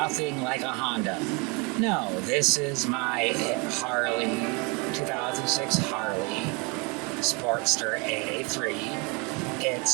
like a Honda. No, this is my Harley, 2006 Harley Sportster A3.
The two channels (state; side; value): quieter; left; 30.3 dB